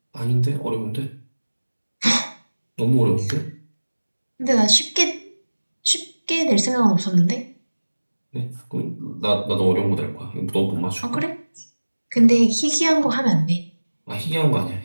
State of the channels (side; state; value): both; inverted; correlation -1.00